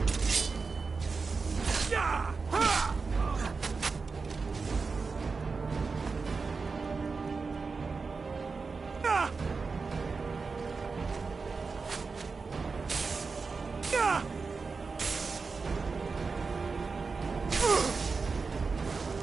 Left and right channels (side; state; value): left; quieter; 4.6 dB